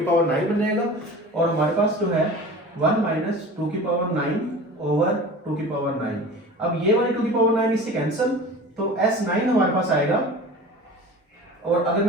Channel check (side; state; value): both; normal; correlation 0.38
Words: पावर 9 बन जाएगा और हमारे पास जो है 1 माइनस 2 की पावर 9 ओवर 2 की पावर 9। अब ये वाली 2 की पावर 9 इससे कैंसिल, तो S9 हमारे पास आएगा और अगर